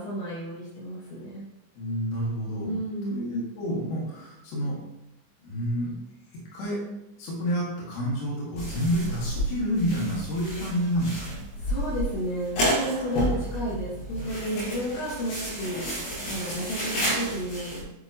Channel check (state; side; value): late; right; 25 ms